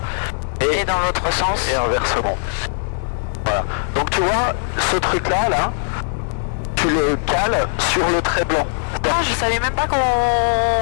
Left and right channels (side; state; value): right; silent; digital silence